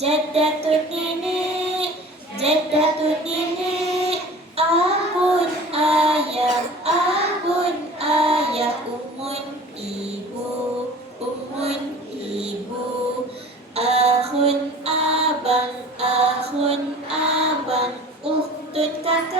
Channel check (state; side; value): normal; both; correlation 0.43